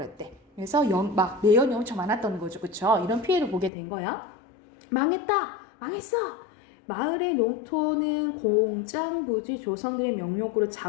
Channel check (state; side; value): drops out; right; at 3.7 s